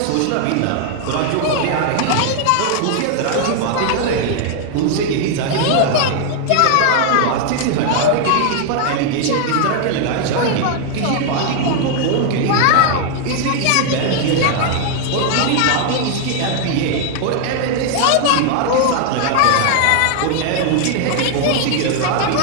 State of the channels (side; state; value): both; different; correlation 0.00